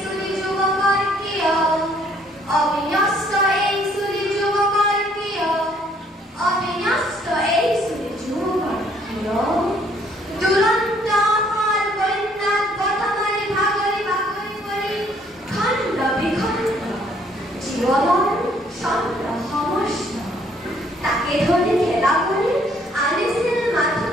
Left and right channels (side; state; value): both; normal; correlation 0.64